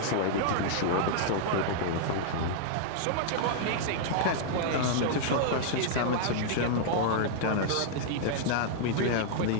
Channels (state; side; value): different; both; correlation -0.01